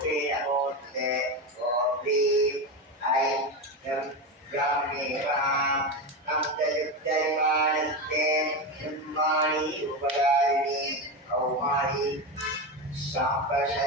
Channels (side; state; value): both; normal; correlation 0.17